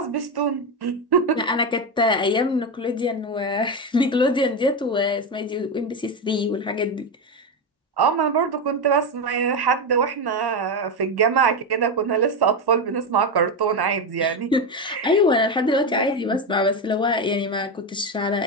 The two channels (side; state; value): both; normal; correlation 0.12